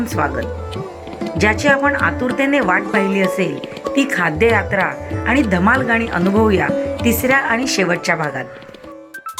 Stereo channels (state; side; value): identical; both; correlation 1.00